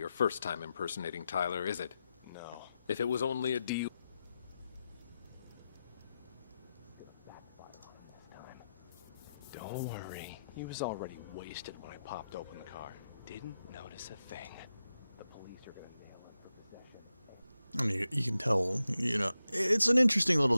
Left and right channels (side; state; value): both; inverted; correlation -0.90